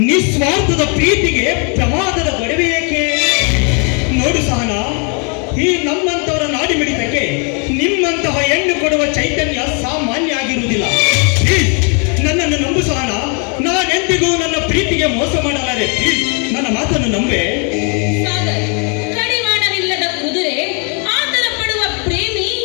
ನಿಸ್ವಾರ್ಥದ ಪ್ರೀತಿಗೆ ಪ್ರಮಾದದ ಒಡವೆ ಏಕೆ? ನೋಡು ಸಹನ, ಈ ನಮ್ಮಂತವರ ನಾಡಿ ಮಿಡಿತಕ್ಕೆ ನಿಮ್ಮಂತಹ ಹೆಣ್ಣು ಕೊಡುವ ಚೈತನ್ಯ ಸಾಮಾನ್ಯ ಆಗಿರುವುದಿಲ್ಲ. ಪ್ಲೀಸ್, ನನ್ನನ್ನು ನಂಬು ಸಹನ. ನಾನೆಂದಿಗೂ ನನ್ನ ಪ್ರೀತಿಗೆ ಮೋಸ ಮಾಡಲಾರೆ. ಪ್ಲೀಸ್, ನನ್ನ ಮಾತನ್ನು ನಂಬೆ. ಸಾಗರ್, ಕಡಿವಾಣವಿಲ್ಲದ ಕುದುರೆ, ಆತರ ಪಡುವ ಪ್ರೇಮಿ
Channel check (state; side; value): quieter; right; 37.3 dB